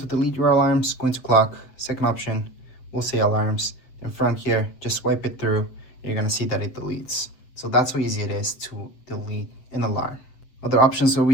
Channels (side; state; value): right; late; 7.8 ms